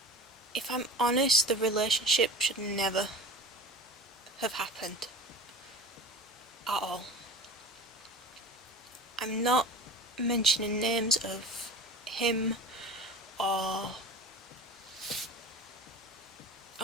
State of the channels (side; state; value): both; normal; correlation 0.36